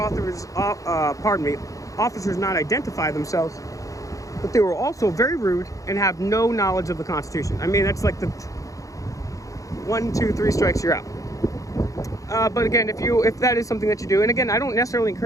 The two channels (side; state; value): right; late; 0.16 ms